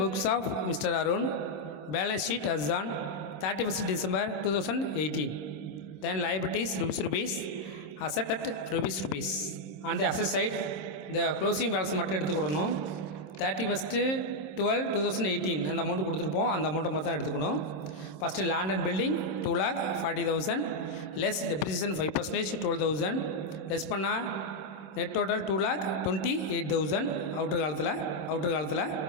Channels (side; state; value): right; late; 27 ms